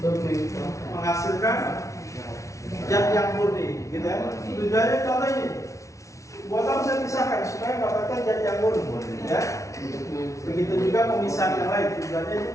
menghasilkan zat yang murni, gitu ya. Tujuannya contoh ini. Buat apa saya pisahkan supaya mendapatkan zat yang murni, ya. Begitu juga pemisahan yang lain. Tujuannya itu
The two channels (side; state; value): right; late; 0.15 ms